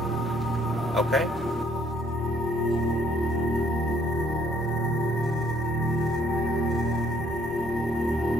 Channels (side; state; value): both; normal; correlation 0.64